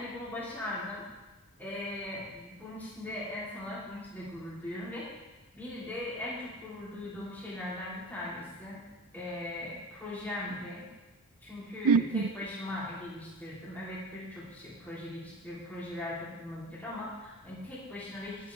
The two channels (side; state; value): both; normal; correlation 0.32